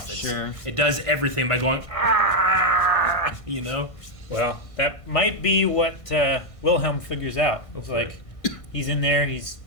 Sure. It does everything by going ah, you know. Well, that might be what Wilhelm figures out. It's Hopefully. like he's in there. He's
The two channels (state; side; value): late; right; 1.5 ms